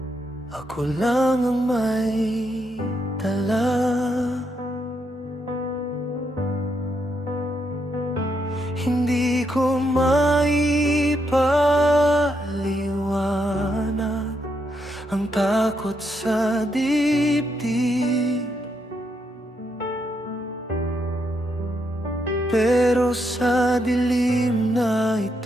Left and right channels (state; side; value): normal; both; correlation 0.79